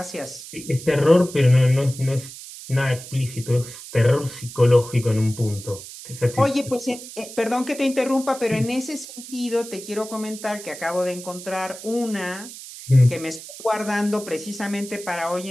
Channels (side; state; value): right; noise; hiss, 14 dB below the sound